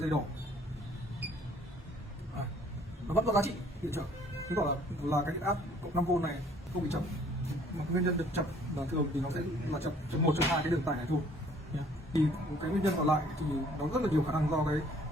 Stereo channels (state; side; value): normal; both; correlation 0.58